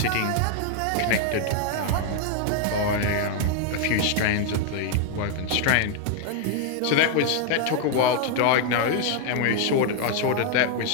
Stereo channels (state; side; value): different; both; correlation 0.00